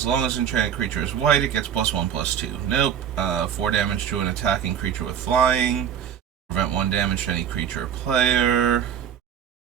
long as enchanted creature is white, it gets +1/+2. Nope. 4 damage to an attacking creature with flying. Prevent 1 damage to any creature or player.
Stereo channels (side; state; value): left; quieter; 8.7 dB